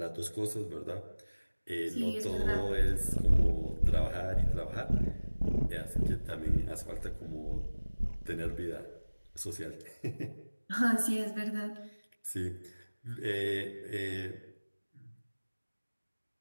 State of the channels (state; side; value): inverted; both; correlation -1.00